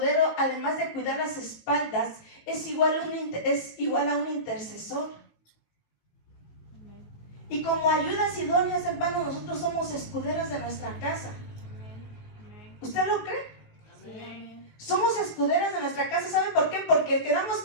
además de cuidar las espaldas, es igual a un intercesor. Y como ayudas idóneas, hermanos, nosotros somos escuderas de nuestra casa. ¿Usted lo cree? Somos escuderas de nuestra casa. ¿Sabe por qué? Porque quedamos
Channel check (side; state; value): right; late; 19 ms